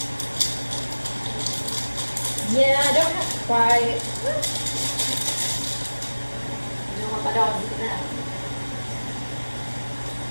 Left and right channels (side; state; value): both; inverted; correlation -1.00